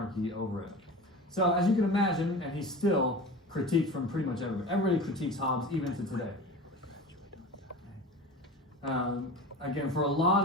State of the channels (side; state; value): both; normal; correlation 0.33